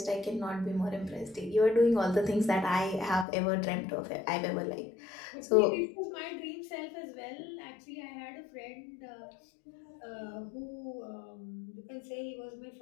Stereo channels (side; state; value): right; drops out; at 3.2 s